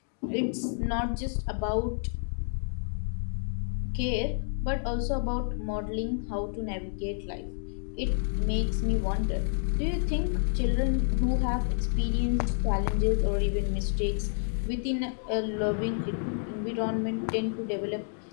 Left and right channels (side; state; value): right; silent; 58 dB below the other